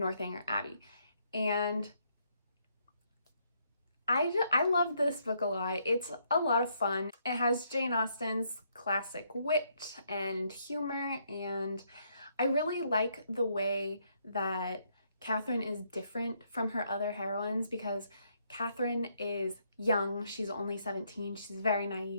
Abbey. And I love this book a lot. It's a lot of fun. It has Jane Austen's classic wit and humor, and I really like the way that Catherine is different from her other heroines because Catherine is young, she's only 17, she's very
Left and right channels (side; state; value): both; inverted; correlation -0.73